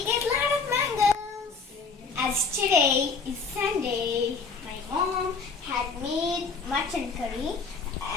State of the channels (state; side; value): quieter; right; 4.8 dB